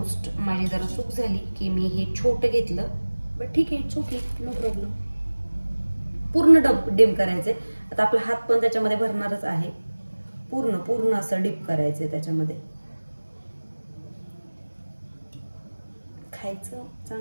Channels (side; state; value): both; inverted; correlation -1.00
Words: माझी जरा चूक झाली की मी हे छोटं घेतलं, बट ठीक आहे, इट्स ओके, नो प्रॉब्लेम. पूर्ण डिप करायचे. आता आपला हात पण त्याच्यामध्ये भरणारच आहे. पूर्ण पूर्ण असं डिप करायचंय त्याच्यामध्ये. खायचं